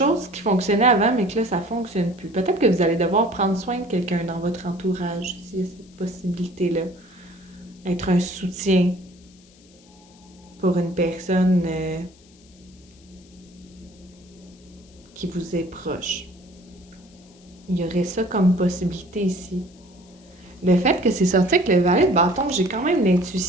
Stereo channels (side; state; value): left; noise; hiss, 28 dB below the sound